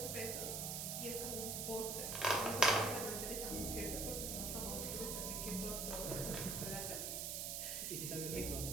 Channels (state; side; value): noise; right; hiss, 2 dB below the sound